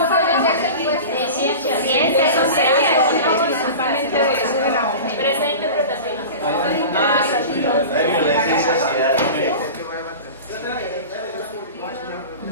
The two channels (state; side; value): inverted; both; correlation -0.33